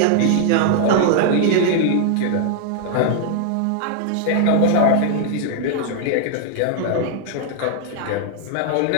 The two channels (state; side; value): different; both; correlation 0.00